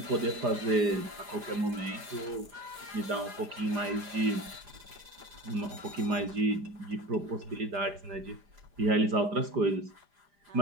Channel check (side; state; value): left; late; 4.9 ms